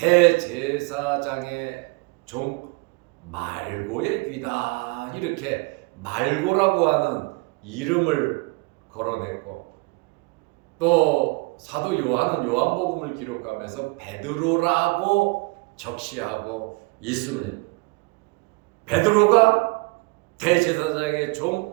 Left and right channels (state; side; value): quieter; left; 27.0 dB